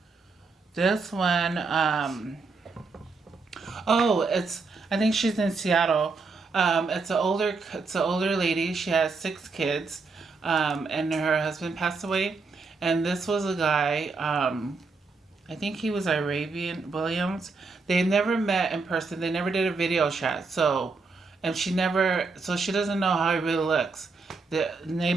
This one, I think she's in Seattle. It's an older lady. She has 6 kids, and her husband passed away. And this was a guy, I think he was Arabian Williams. They never met in person. They never did a video chat. So she doesn't know how he really looks.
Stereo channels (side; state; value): left; quieter; 4.2 dB